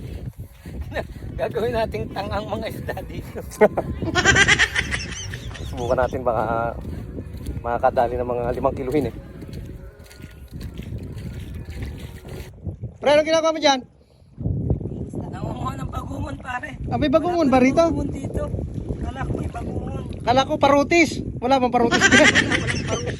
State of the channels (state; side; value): identical; both; correlation 1.00